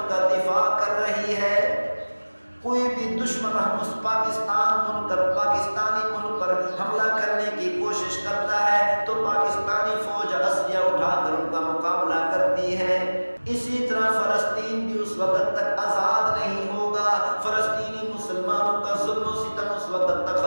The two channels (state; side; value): inverted; both; correlation -1.00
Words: کا دفاع کر رہی ہے، کوئی بھی دشمن پاکستانی ملک پر حملہ کرنے کی کوشش کرتا ہے تو پاکستان